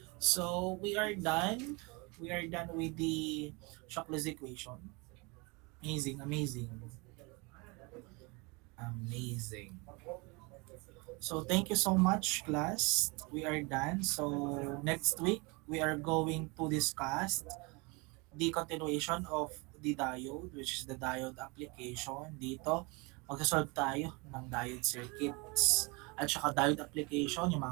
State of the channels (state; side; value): quieter; left; 28.2 dB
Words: So we are done. We are done with the Shockley's equation. Amazing, amazing. Amazing. So thank you so much, class. We are done. So next week, we are going to discuss the continuation of the diode, which is the diode application. Dito, magsasolve tayo ng diode circuits. At saka diode application, yung